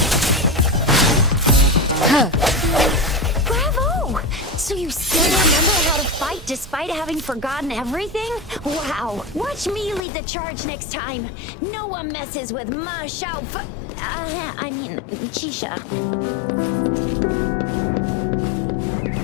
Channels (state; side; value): drops out; right; at 10.0 s